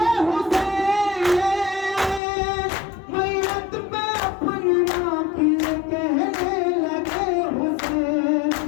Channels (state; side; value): drops out; right; at 2.2 s